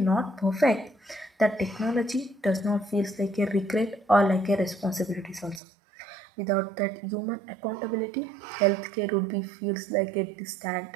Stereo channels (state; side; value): drops out; left; at 5.6 s